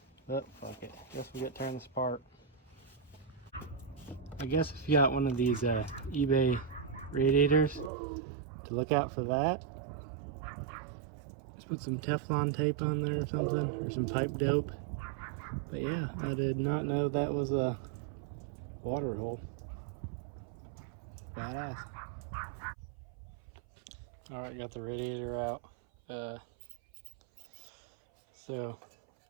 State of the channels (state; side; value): drops out; left; at 7.9 s